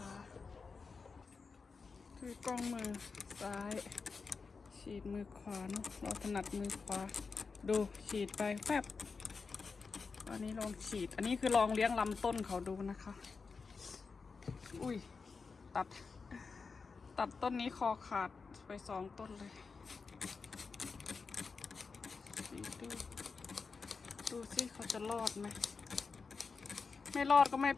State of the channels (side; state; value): right; quieter; 4.8 dB